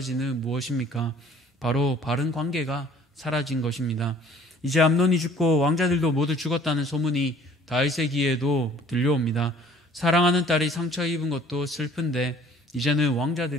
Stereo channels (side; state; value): both; normal; correlation 0.54